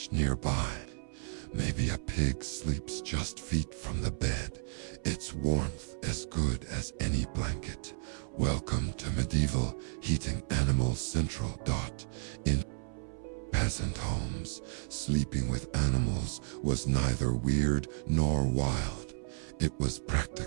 nearby. Maybe a pig sleeps just feet from the bed, its warmth as good as any blanket. Welcome to medieval heating animals central. In peasant homes, sleeping with animals was neither weird nor wild. It was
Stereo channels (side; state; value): left; silent; 56 dB below the other